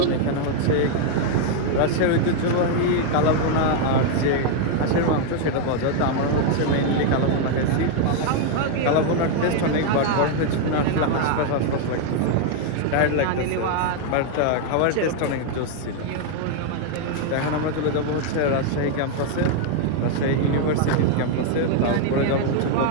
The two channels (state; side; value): different; both; correlation 0.00